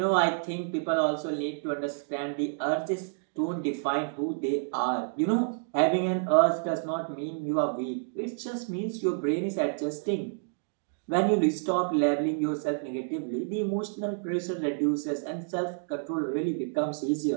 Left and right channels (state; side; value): silent; left; digital silence